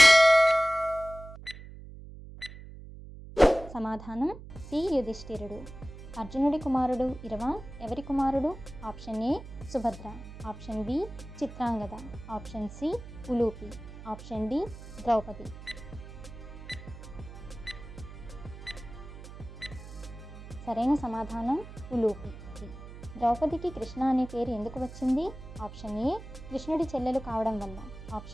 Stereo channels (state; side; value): noise; right; hum, 14 dB below the sound